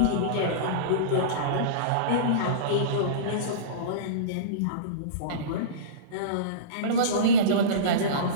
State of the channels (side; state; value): both; different; correlation -0.08